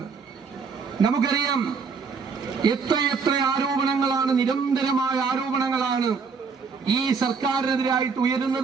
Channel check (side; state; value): left; quieter; 5.3 dB